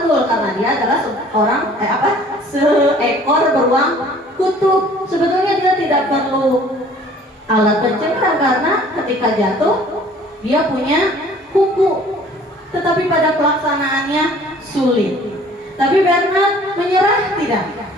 karena dia adalah seekor beruang kutub. Sebetulnya dia tidak perlu alat pencengkram karena ketika jatuh dia punya kuku. Tetapi pada pelaksanaannya sulit. Tapi Bernard menyerah tidak?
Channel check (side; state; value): both; normal; correlation 0.53